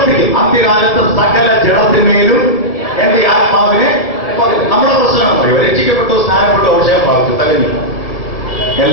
അന്ത്യകാലത്ത് സകല ജഡത്തിന്മേലും എന്റെ ആത്മാവിനെ. നമ്മുടെ പ്രശ്നം പറയും, രക്ഷിക്കപ്പെട്ടു, സ്നാനപ്പെട്ടു, അഭിഷേകം പ്രാപിച്ചു, തകഞ്ഞു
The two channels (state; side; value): late; right; 1.6 ms